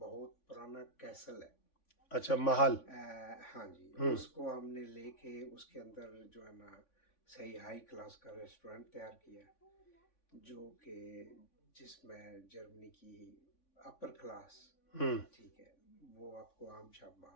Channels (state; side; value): late; right; 3.5 ms